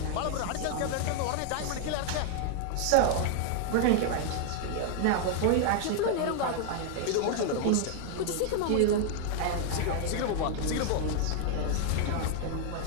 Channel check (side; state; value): both; different; correlation 0.00